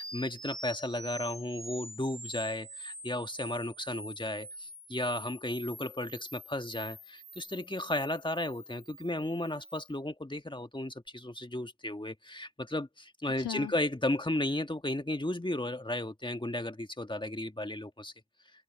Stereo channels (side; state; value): both; normal; correlation 0.56